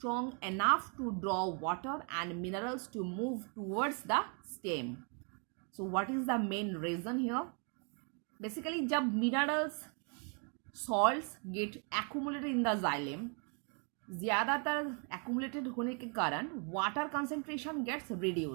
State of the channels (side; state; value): left; quieter; 38.7 dB